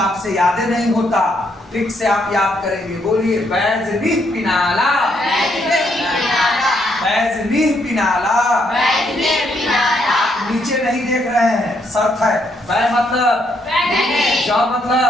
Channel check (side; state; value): both; normal; correlation 0.74